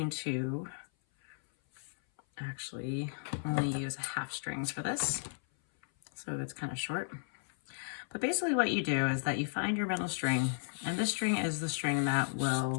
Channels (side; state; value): right; silent; 55 dB below the other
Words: to actually only use half strings for this, so it's kind of short. But basically what you do is that you find your middle string, and this string is the string that